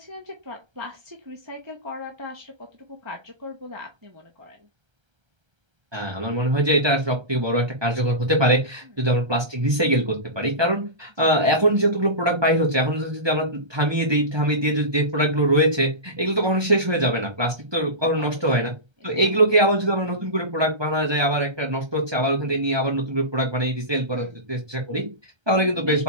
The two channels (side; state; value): left; late; 1.3 ms